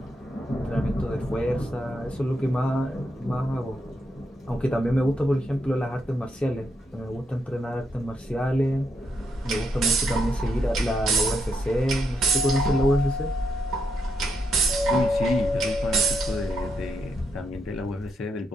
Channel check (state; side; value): normal; both; correlation 0.80